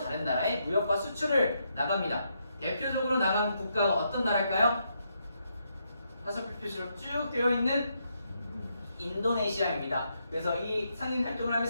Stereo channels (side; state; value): both; inverted; correlation -0.79